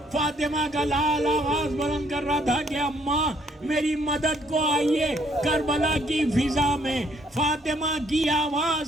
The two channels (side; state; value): both; normal; correlation 0.67